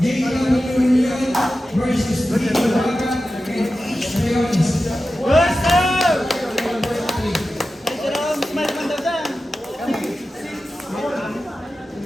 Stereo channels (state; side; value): normal; both; correlation 0.93